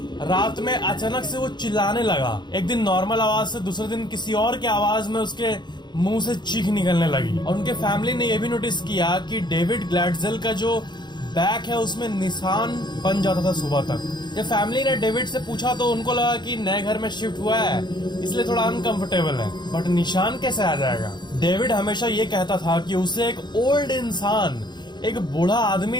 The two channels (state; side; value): late; right; 0.21 ms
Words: रात में अचानक से वो चिल्लाने लगा। एक दिन नॉर्मल आवाज से दूसरे दिन किसी और की आवाज में उसके मुंह से चीख निकलने लगी। और उनके फैमिली ने यह भी नोटिस किया कि डेविड ग्लैडजेल का जो बैक है उसमें निशान बन जाता था सुबह तक। जब फैमिली ने डेविड से पूछा तो उनको लगा कि नए घर में शिफ्ट हुआ है इसलिए थोड़ा अनकंफर्टेबल है, बट निशान कैसे आ जाएगा। डेविड हमेशा ये कहता था कि उसे एक ओल्ड इंसान, एक बूढ़ा